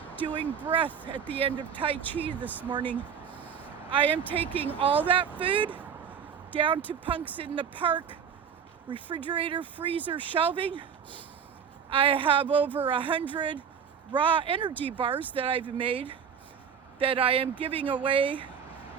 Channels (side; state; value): left; quieter; 7.3 dB